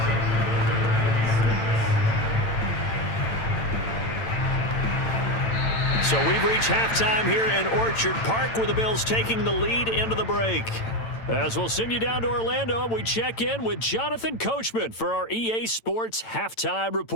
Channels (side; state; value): right; late; 8.9 ms